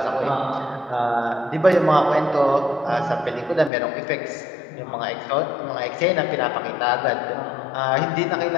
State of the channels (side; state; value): right; drops out; at 3.7 s